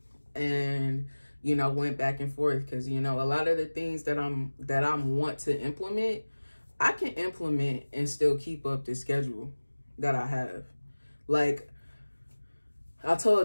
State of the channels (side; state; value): both; inverted; correlation -1.00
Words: and you know, went back and forth, because you know, a lot of the things that I want to implement, I can implement and still keep up the schedule that I have. Like I